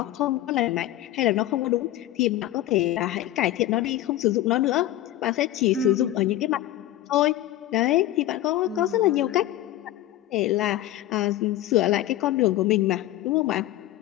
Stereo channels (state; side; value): quieter; right; 14.3 dB